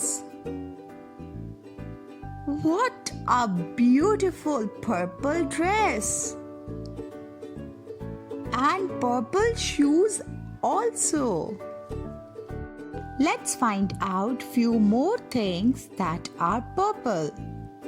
What a beautiful purple dress! And purple shoes also. Let's find out few more things that are purple.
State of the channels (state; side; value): identical; both; correlation 1.00